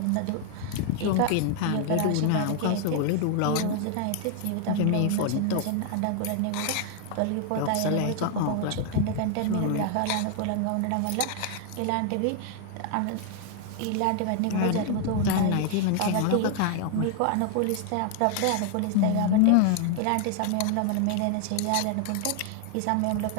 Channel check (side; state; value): both; different; correlation 0.00